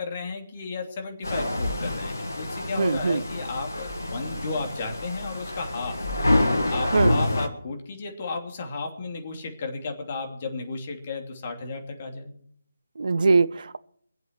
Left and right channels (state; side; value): inverted; both; correlation -0.88